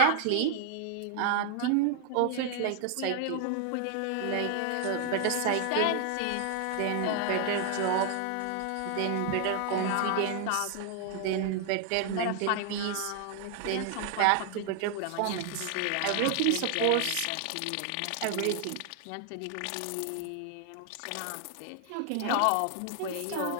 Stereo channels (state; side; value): different; both; correlation 0.00